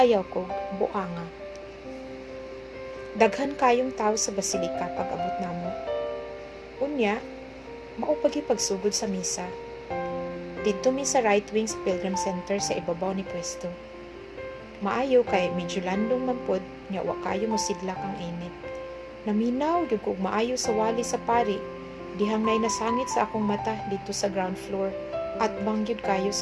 Ayaw kog Buanga. Daghan kayong tao sa basilika pag abot namo. Unya, mao pagsugod sa misa. Didto mi sa right wing sa Pilgrim Center sa ibabaw ni pwesto. Maayo kay medyo landong man pod nya wa kayo mosidlak ang init. Naminaw gyud kog maayo sa wali sa pari, dihang nay nasangit sa akong mata dito sa ground floor at bangyud kayo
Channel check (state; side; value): identical; both; correlation 1.00